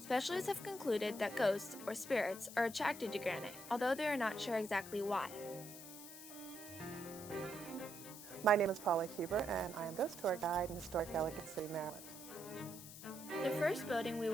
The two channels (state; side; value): noise; left; hiss, 13 dB below the sound